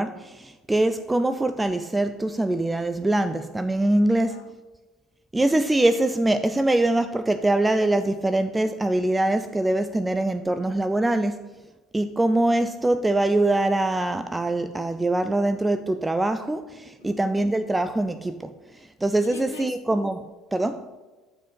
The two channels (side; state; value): both; normal; correlation 0.94